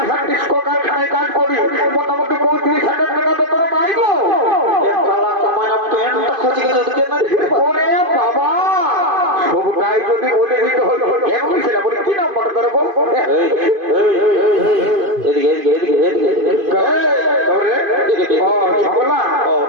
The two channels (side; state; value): left; late; 2.5 ms